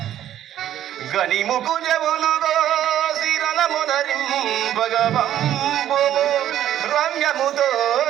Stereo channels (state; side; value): quieter; left; 11.6 dB